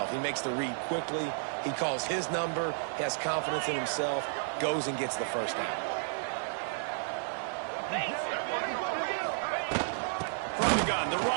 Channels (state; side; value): silent; left; 56 dB below the other